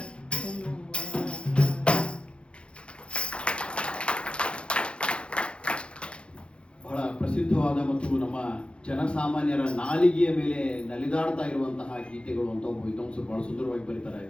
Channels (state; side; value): late; right; 0.057 ms